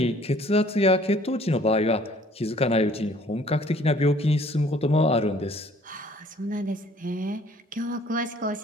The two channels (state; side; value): normal; both; correlation 0.56